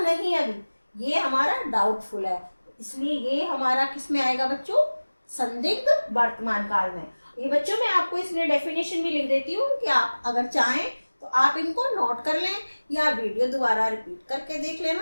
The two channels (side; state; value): both; inverted; correlation -1.00